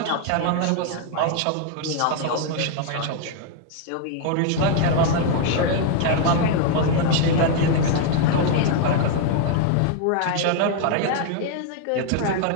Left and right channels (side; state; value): both; different; correlation 0.00